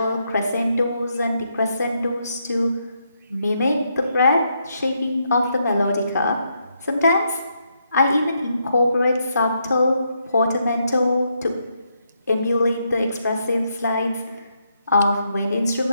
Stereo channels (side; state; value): both; inverted; correlation -0.78